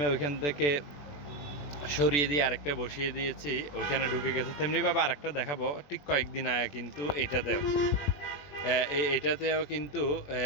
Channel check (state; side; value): late; right; 21 ms